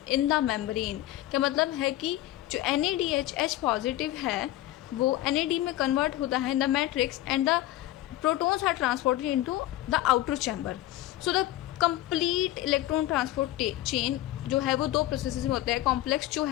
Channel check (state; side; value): quieter; right; 15.2 dB